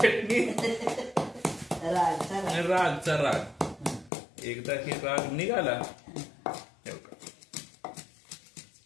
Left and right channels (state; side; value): drops out; right; at 4.1 s